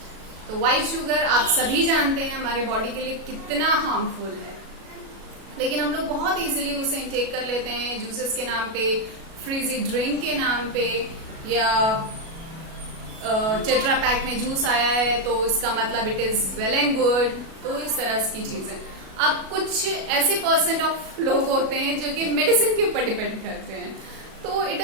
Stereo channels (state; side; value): late; left; 37 ms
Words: तो व्हाइट शुगर आप सभी जानते हैं हमारे बॉडी के लिए कितना हार्मफुल है, लेकिन हम लोग बहुत इजीली उसे इंटेक कर लेते हैं जूसेस के नाम पे, फ्रीजी ड्रिंक के नाम पे, या टेट्रा पैक में जूस आया है तो इसका मतलब it is well and good. तो इस तरह की चीजें. अब कुछ ऐसे परसेंट ऑफ लोग होते हैं जो कि मेडिसिन के ऊपर डिपेंड करते हैं. तो इट